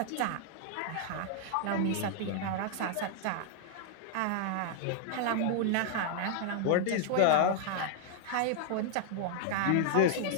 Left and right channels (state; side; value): different; both; correlation 0.00